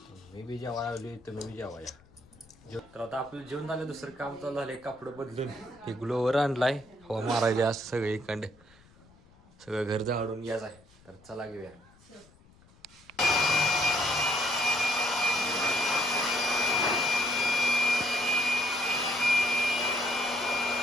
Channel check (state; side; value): noise; left; rumble, 27 dB below the sound